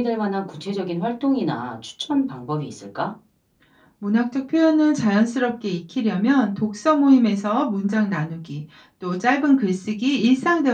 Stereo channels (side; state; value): both; identical; correlation 1.00